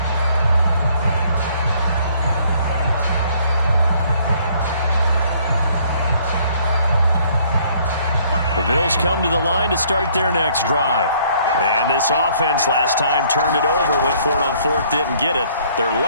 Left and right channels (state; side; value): inverted; both; correlation -0.62